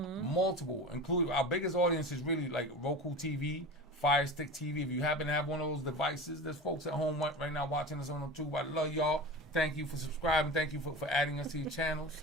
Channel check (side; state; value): both; normal; correlation 0.30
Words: including our biggest audience is really like Roku TV, Fire Stick TV. If you happen to have one of those devices, there's folks at home right now watching us on them too. I love y'all. Thank you for subscribing. Thank you for adding us to your